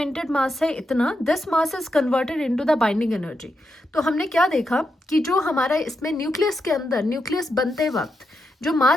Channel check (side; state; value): both; normal; correlation 0.85